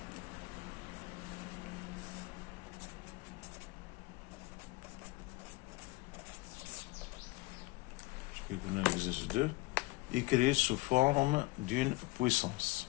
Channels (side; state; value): right; quieter; 22.4 dB